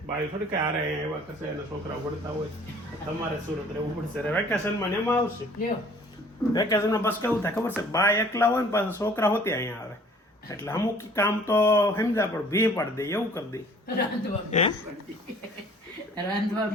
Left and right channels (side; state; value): both; normal; correlation 0.53